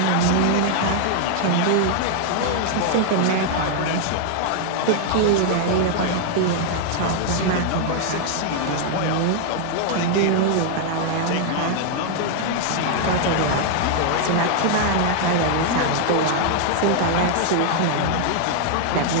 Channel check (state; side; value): different; both; correlation 0.00